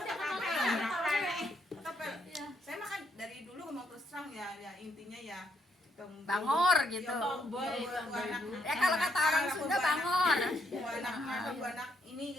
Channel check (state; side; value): normal; both; correlation 0.74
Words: tepel saya makan dari dulu mau terus terang ya intinya ya Bangor gitu. Ya kalau kata orang Sunda bangor. anak ini